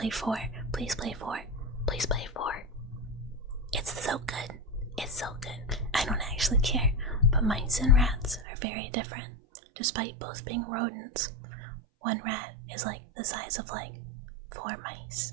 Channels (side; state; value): left; drops out; at 8.5 s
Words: 4, please play 4. It's so good. I don't actually care, but mice and rats are very different, despite both being rodents. One rat is like the size of like 4 mice,